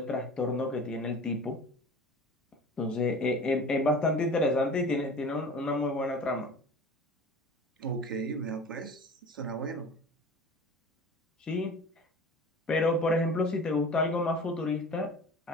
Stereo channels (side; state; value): both; normal; correlation 0.40